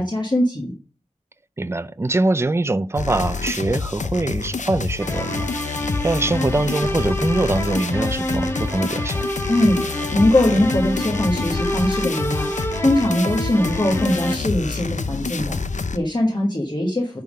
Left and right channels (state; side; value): normal; both; correlation 0.84